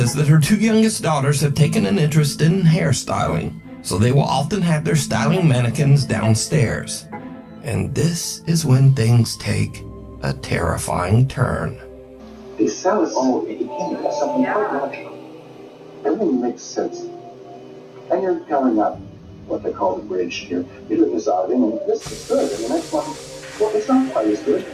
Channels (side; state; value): both; identical; correlation 1.00